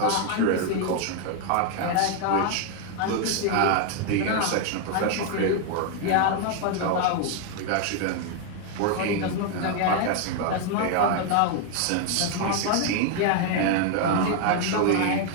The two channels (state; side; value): different; both; correlation 0.00